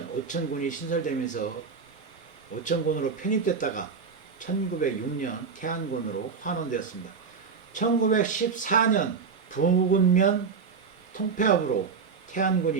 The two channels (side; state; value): left; quieter; 5.6 dB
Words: 오천군이 신설되면서 오천군으로 편입됐다가 1906년 태안군으로 환원되었습니다. 1914년 부군면 통폐합으로